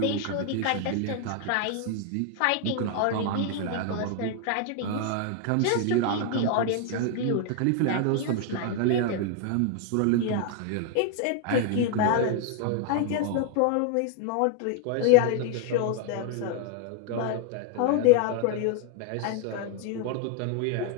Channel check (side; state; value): both; different; correlation 0.00